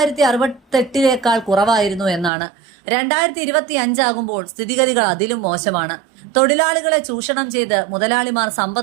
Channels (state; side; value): drops out; left; at 2.3 s